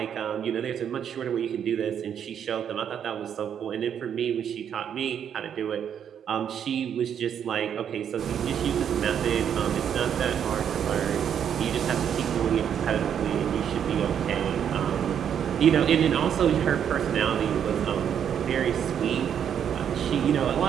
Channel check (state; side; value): quieter; left; 8.6 dB